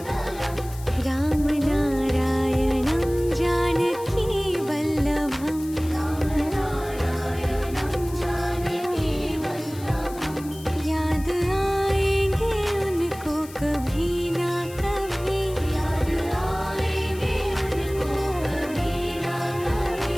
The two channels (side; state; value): left; noise; hiss, 18 dB below the sound